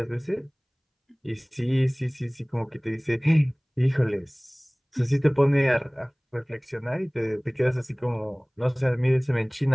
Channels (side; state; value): both; identical; correlation 1.00